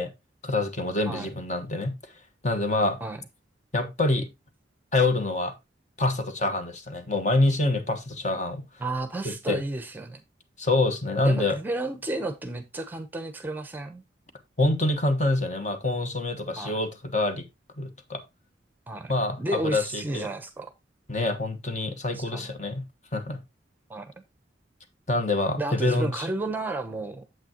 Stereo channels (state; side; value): normal; both; correlation 0.49